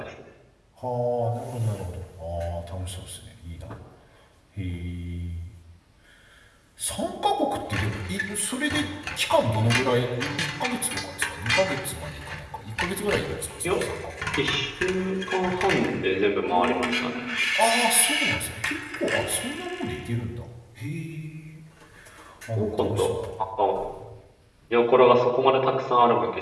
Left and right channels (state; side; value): identical; both; correlation 1.00